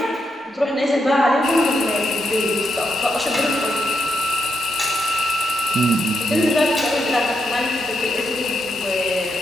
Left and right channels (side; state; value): both; normal; correlation 0.81